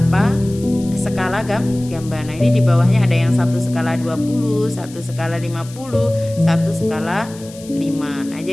skala gambar. Nah, ini di bawahnya ada yang 1 skala 20, 1 skala 50, 1 skala 5. Nah,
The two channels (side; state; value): left; noise; hiss, 20 dB below the sound